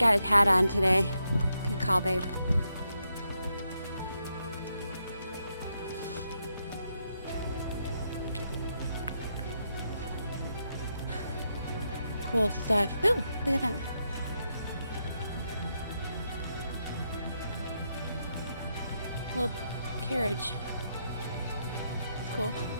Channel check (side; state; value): both; inverted; correlation -0.81